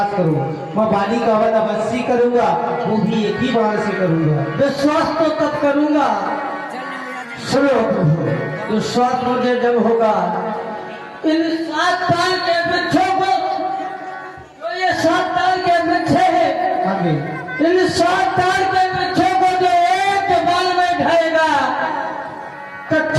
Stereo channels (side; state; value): both; identical; correlation 1.00